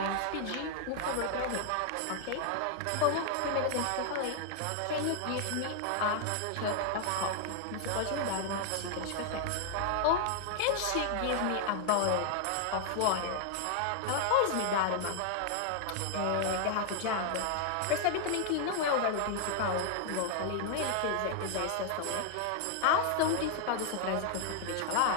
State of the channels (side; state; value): both; different; correlation 0.00